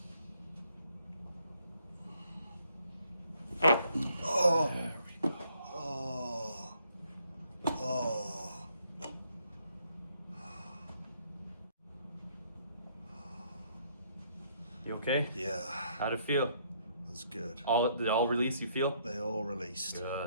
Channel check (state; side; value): inverted; both; correlation -0.68